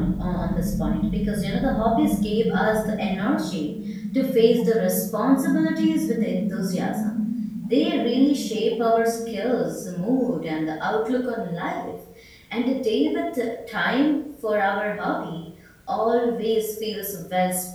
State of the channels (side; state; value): both; identical; correlation 1.00